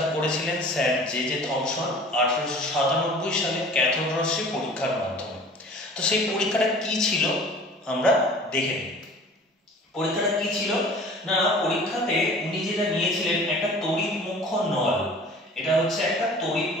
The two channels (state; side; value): normal; both; correlation 0.45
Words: করেছিলেন স্যার জে থমসন 1897 সালে ক্যাথোড রশ্মি পরীক্ষার মাধ্যমে। তো সেই পরীক্ষাটা কি ছিল আমরা দেখে নিই। পরীক্ষাটা কি ছিল না, পরীক্ষাতে উনি যেটা নিয়েছিলেন একটা তড়িৎ মুখ্য নল। এটা হচ্ছে একটা তড়িৎ